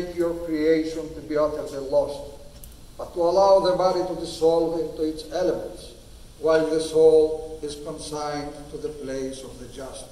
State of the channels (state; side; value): identical; both; correlation 1.00